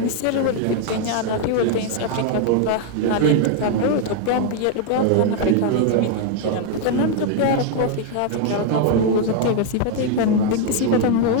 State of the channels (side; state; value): both; different; correlation 0.00